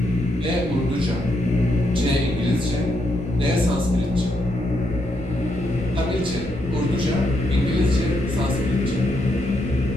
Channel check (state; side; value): noise; left; rumble, 17 dB below the sound